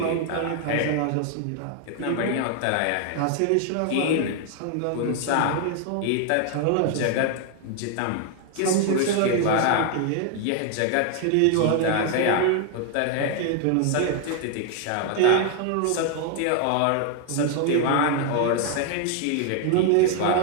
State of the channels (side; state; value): both; different; correlation 0.00